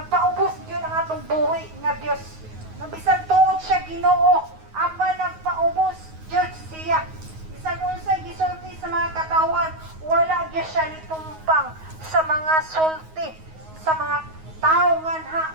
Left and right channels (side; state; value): left; late; 9.4 ms